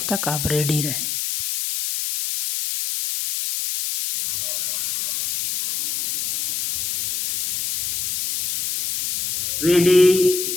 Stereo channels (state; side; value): noise; left; hiss, 2 dB below the sound